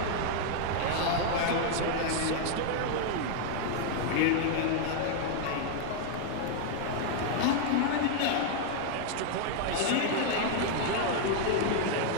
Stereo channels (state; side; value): different; both; correlation 0.00